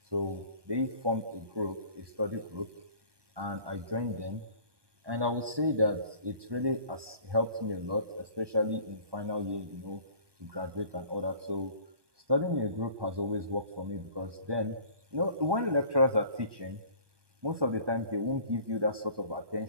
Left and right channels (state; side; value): late; left; 1.2 ms